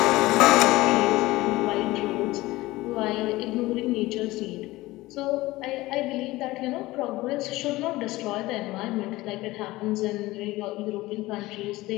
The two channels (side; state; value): right; quieter; 18.9 dB